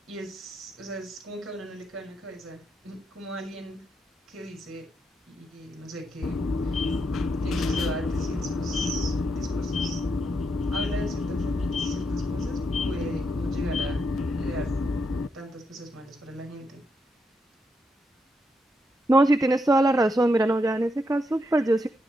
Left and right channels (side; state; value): both; normal; correlation 0.80